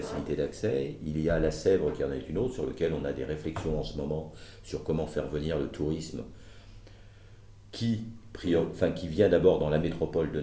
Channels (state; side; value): identical; both; correlation 1.00